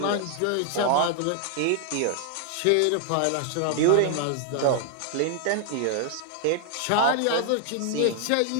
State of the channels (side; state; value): both; different; correlation 0.00